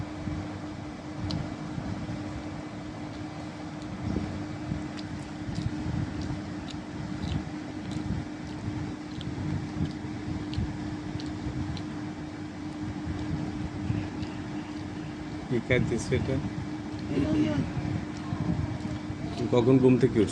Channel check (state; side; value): identical; both; correlation 1.00